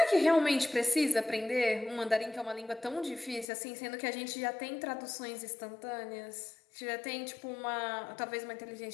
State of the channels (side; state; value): right; drops out; at 3.5 s